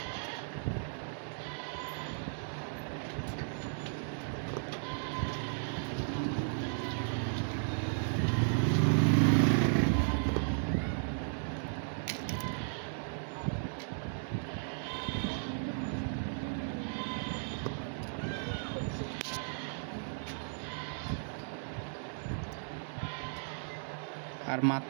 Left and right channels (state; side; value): silent; left; digital silence